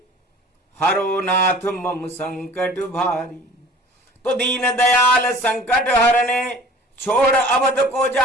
हरो नाथ मम संकट भारी। तो दीन दयाल संकट हरने छोड़ अवध को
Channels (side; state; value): both; normal; correlation 0.46